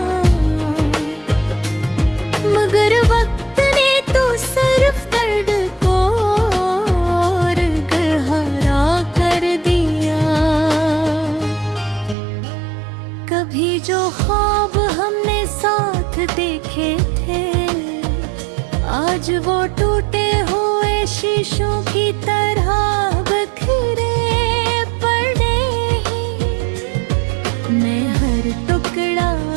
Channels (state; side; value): drops out; left; at 12.2 s